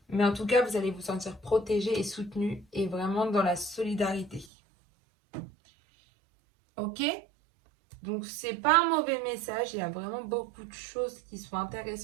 Mais en tout cas, vous allez vous sentir protégé et soutenu et vraiment dans la solidarité. Ok? Donc, c'est pas un mauvais message. Il y a vraiment beaucoup de choses qui sont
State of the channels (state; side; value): drops out; left; at 4.5 s